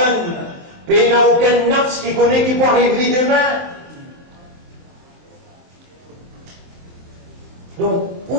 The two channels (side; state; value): left; late; 23 ms